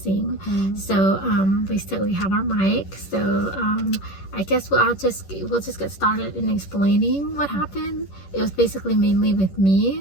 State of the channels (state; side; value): late; right; 11 ms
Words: So we have our mic, so I guess we'll just get started in explaining what happened. It was basically mainly with